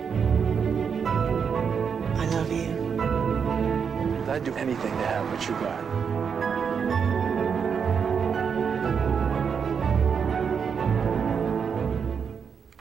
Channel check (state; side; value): quieter; left; 6.6 dB